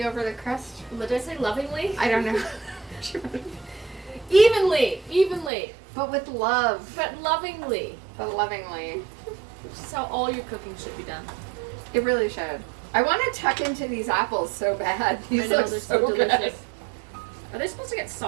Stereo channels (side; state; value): left; drops out; at 5.5 s